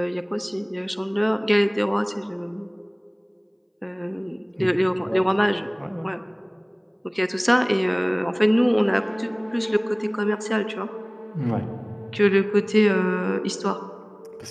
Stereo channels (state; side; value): identical; both; correlation 1.00